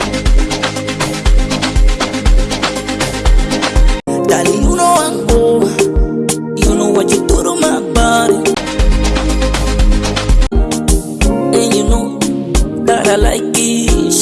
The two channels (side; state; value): both; identical; correlation 1.00